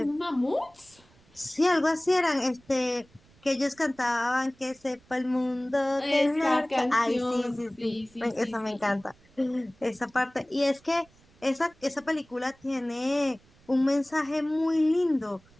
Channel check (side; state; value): right; noise; rumble, 29 dB below the sound